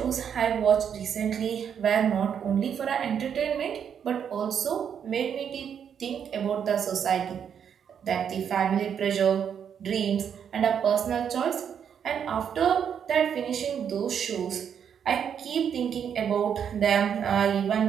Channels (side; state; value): left; quieter; 8.0 dB